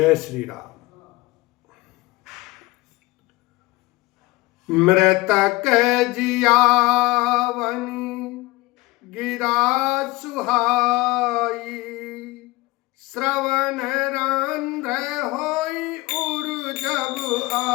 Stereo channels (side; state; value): right; quieter; 21.4 dB